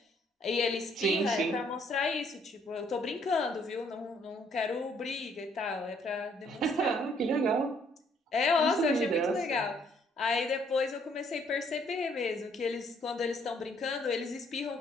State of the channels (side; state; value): both; normal; correlation 0.66